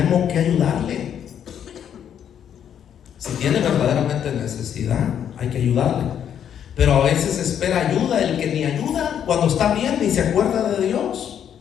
que ayudarle. Si tiene verdaderamente necesidad, hay que ayudarle. Pero a veces espera ayuda el que ni ayuda, cuando está bien ni se acuerda de Dios.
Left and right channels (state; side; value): quieter; right; 9.1 dB